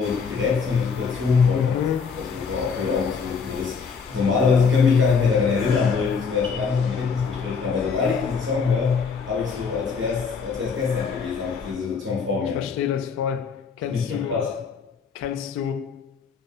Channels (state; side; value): quieter; right; 5.5 dB